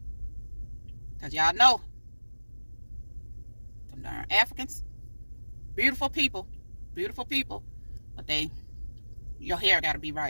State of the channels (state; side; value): inverted; both; correlation -1.00